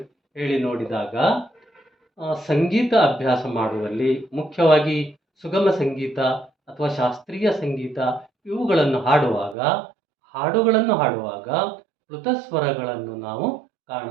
ಹೇಳಿ ನೋಡಿದಾಗ ಸಂಗೀತ ಅಭ್ಯಾಸ ಮಾಡುವಲ್ಲಿ, ಮುಖ್ಯವಾಗಿ ಸುಗಮ ಸಂಗೀತ ಅಥವಾ ಶಾಸ್ತ್ರೀಯ ಸಂಗೀತ ಇವುಗಳನ್ನು ಹಾಡುಗಳನ್ನು ಹಾಡುವಾಗ ಪ್ಲುತ ಸ್ವರಗಳನ್ನು ನಾವು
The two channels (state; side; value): drops out; left; at 9.6 s